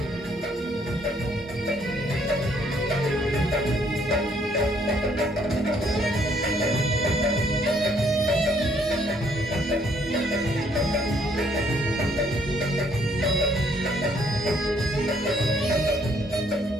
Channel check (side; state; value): both; normal; correlation 0.67